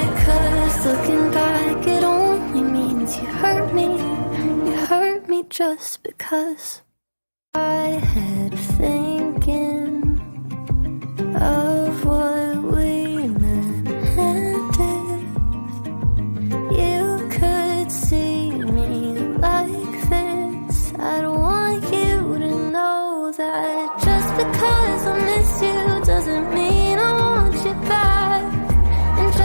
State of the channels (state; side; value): inverted; both; correlation -1.00